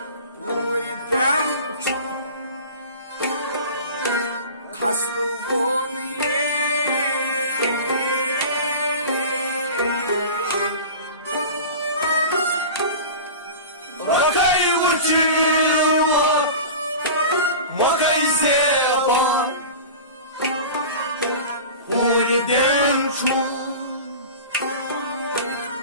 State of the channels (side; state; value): both; inverted; correlation -0.35